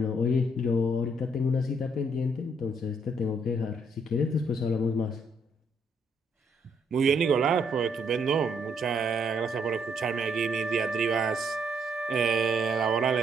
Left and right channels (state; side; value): normal; both; correlation 0.71